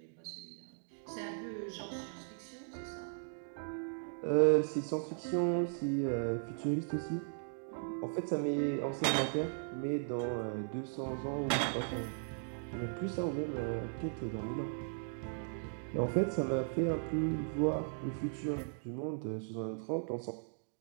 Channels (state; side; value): silent; left; digital silence